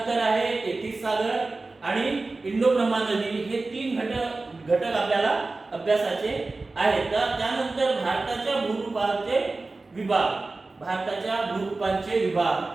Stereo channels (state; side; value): quieter; left; 3.4 dB